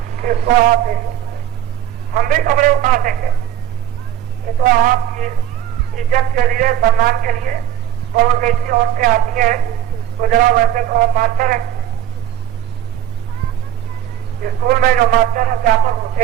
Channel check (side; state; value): left; quieter; 10.8 dB